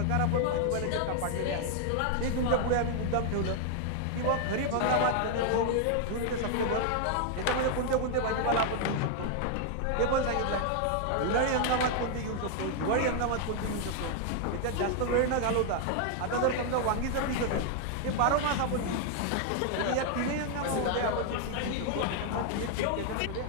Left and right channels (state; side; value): different; both; correlation 0.00